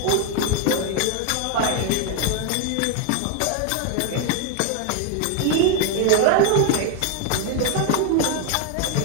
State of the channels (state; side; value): different; both; correlation 0.01